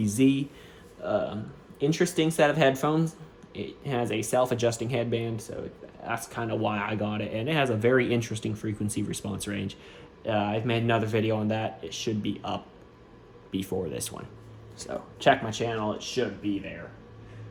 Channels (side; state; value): both; identical; correlation 1.00